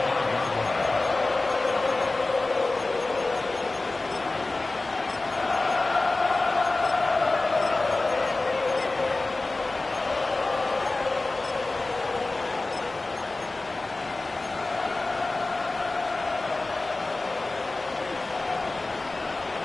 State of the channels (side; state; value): right; quieter; 3.2 dB